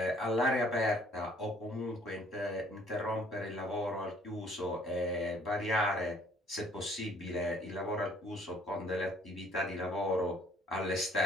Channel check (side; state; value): both; normal; correlation 0.60